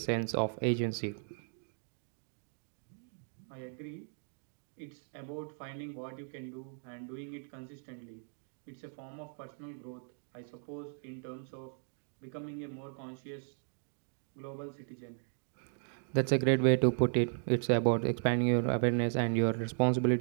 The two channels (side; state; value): left; silent; 54 dB below the other